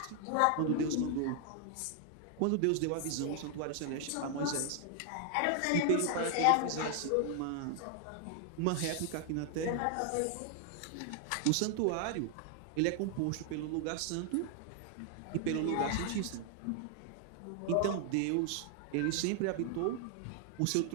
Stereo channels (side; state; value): both; different; correlation 0.00